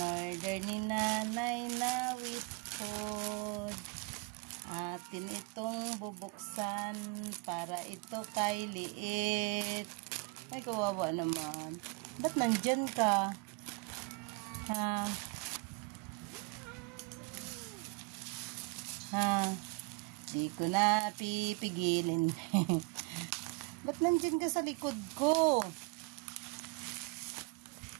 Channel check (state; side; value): quieter; left; 29.1 dB